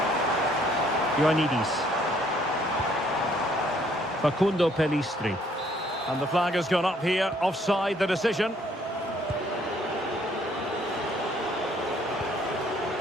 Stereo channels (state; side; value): normal; both; correlation 0.64